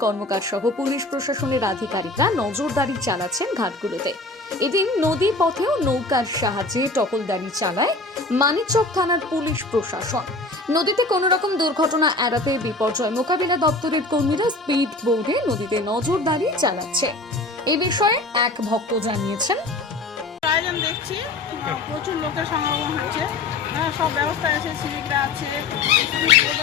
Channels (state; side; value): quieter; right; 3.2 dB